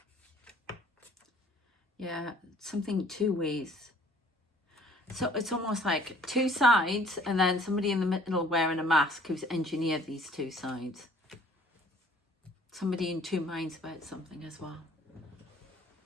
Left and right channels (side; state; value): both; normal; correlation 0.55